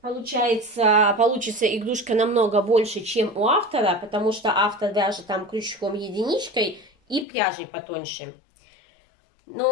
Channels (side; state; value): right; drops out; at 7.2 s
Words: получится игрушка намного больше, чем у автора, потому что автор вяжет там крючком единичкой и пряжей потоньше.